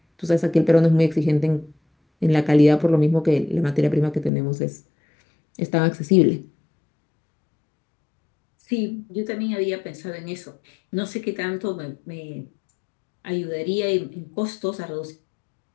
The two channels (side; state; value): right; drops out; at 4.3 s